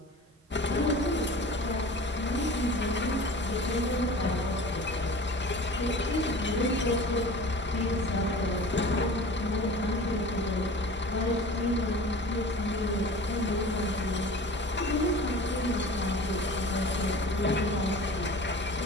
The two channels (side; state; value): both; normal; correlation 0.39